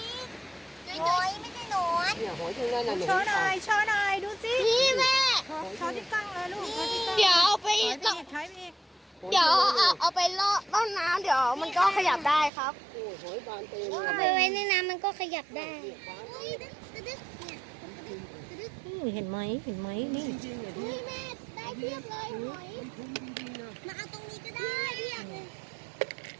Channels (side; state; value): left; drops out; at 12.5 s